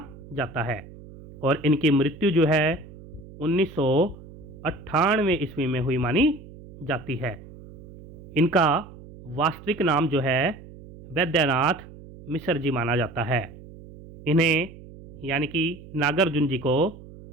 जाता है और इनकी मृत्यु जो है 1998 ईस्वी में हुई मानी जाती है। इनका वास्तविक नाम जो है वैद्यनाथ मिश्र जी माना जाता है। इन्हें यानी कि नागार्जुन जी को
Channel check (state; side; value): noise; right; hum, 18 dB below the sound